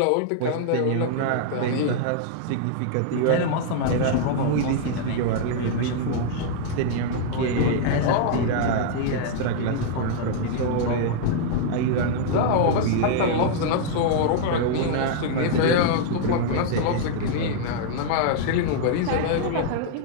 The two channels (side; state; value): both; different; correlation -0.01